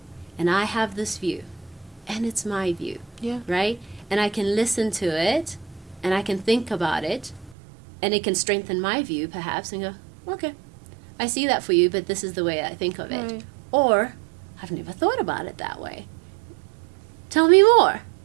and I have this view and it's my view, Yeah. right? And I can listen to it and I can think about it, and it can strengthen my view perhaps, and go, okay, I see that for you, but this is the way I think of it. Right. Or, I've never thought about it that way. Tell me more.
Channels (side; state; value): left; drops out; at 7.6 s